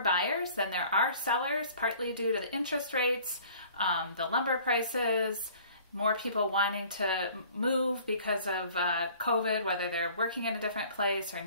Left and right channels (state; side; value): inverted; both; correlation -0.51